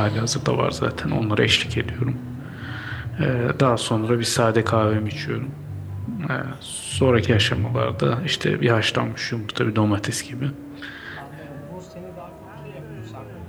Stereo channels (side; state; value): both; identical; correlation 1.00